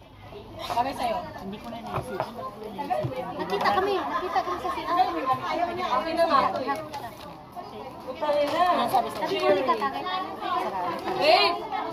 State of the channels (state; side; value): identical; both; correlation 1.00